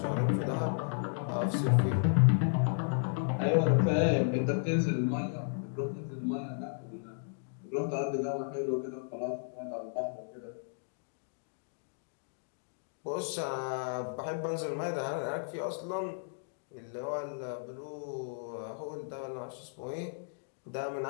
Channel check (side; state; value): right; silent; digital silence